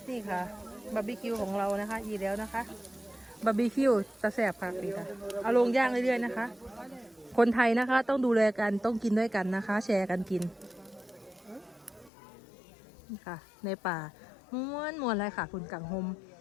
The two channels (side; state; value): right; drops out; at 12.1 s